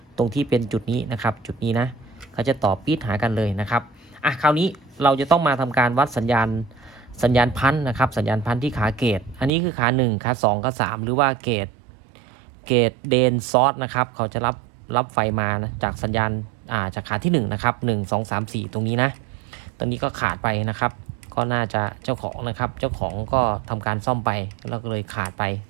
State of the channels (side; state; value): left; drops out; at 9.5 s